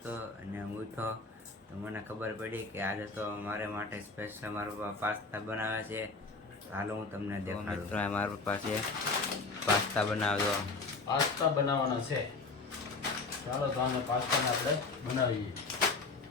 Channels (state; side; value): quieter; right; 3.9 dB